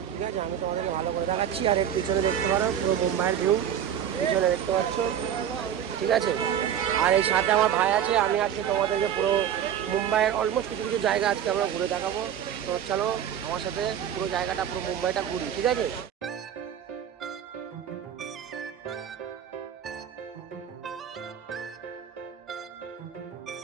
ঠিক আছে, আমি তোমাদেরকে ভালো করে দেখাচ্ছি। আর এর পিছনে দেখতে পারো পুরো মুম্বাইয়ের ভিউ, পিছনে দেখতে পাচ্ছ। ঠিক আছে, আর এই সাথে আমার ভাই আছে। আমি আজকে তোমাদেরকে পুরো মুম্বাইয়ের অলমোস্ট কিছু কিছু জায়গা আজকে আমরা ঘুরে দেখাবো। তো চলো আমার সাথে পুরো জায়গাটা, পুরো মুম্বাইটা ঘুরি। ঠিক আছে,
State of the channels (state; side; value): quieter; left; 9.5 dB